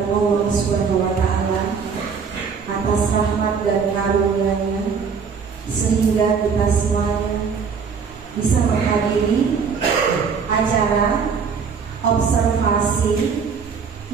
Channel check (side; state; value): left; quieter; 5.9 dB